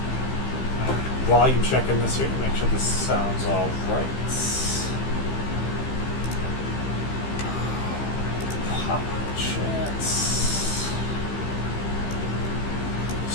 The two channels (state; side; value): late; right; 15 ms